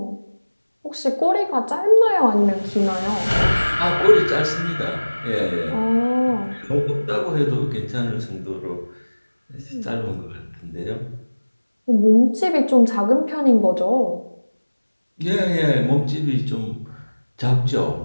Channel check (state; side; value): inverted; both; correlation -1.00